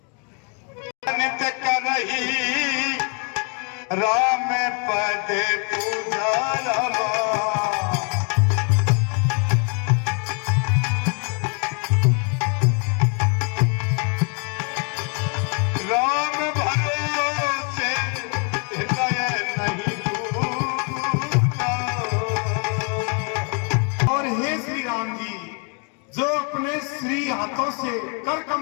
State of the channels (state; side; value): quieter; right; 38.0 dB